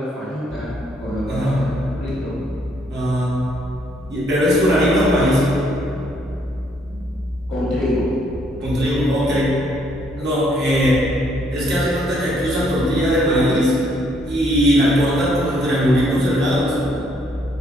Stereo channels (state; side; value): normal; both; correlation 0.69